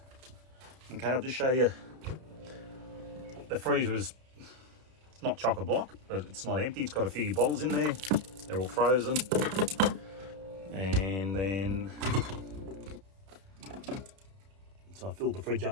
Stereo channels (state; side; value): late; left; 31 ms